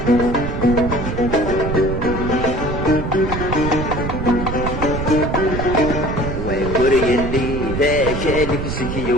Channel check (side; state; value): right; noise; rumble, 4 dB below the sound